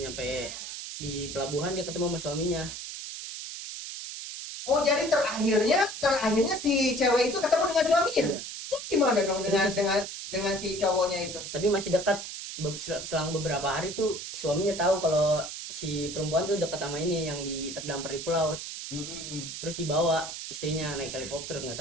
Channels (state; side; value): noise; right; hiss, 8 dB below the sound